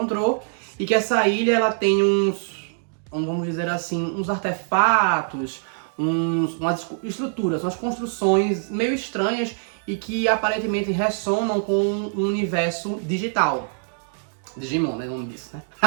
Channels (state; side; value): silent; left; digital silence